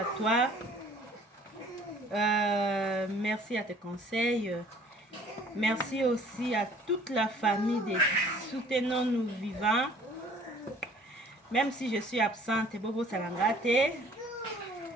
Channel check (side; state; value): both; normal; correlation 0.54